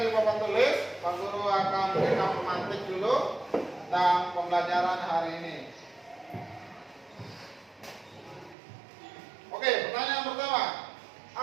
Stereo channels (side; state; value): left; drops out; at 8.6 s